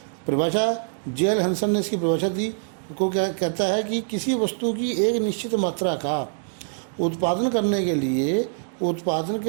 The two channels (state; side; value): silent; left; digital silence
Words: परिभाषा जे.एल. हंसन ने इसकी परिभाषा दी को क्या कहता है कि किसी वस्तु की एक निश्चित मात्रा का उत्पादन करने के लिए उत्पादन